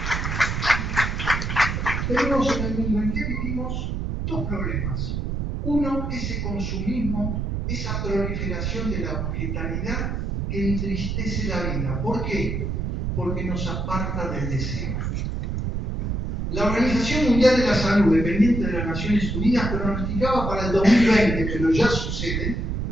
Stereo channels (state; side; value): noise; right; rumble, 2 dB below the sound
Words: vivimos, dos problemas. Uno, ese consumismo, esa proliferación de la objetalidad que entristece la vida. ¿Por qué? Porque nos aparta del deseo. La Organización Mundial de la Salud, dependiente de las Naciones Unidas, pronosticaba para el 2020, pero ya sucede,